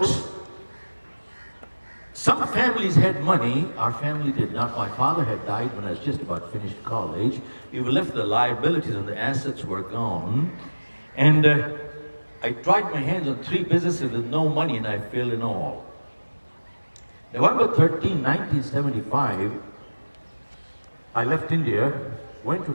some families had money. Our family did not. My father had died when I was just about finished college. We were left with the liabilities and the assets were gone. And I tried my hands on 3 businesses with no money and I failed in all. November 13, 1975, I left India, went to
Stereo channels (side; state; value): both; inverted; correlation -1.00